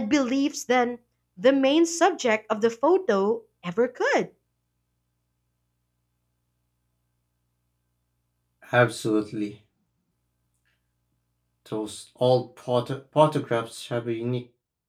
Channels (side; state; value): both; identical; correlation 1.00